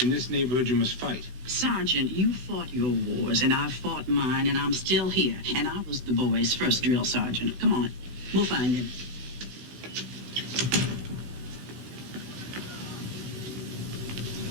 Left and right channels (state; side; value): late; left; 16 ms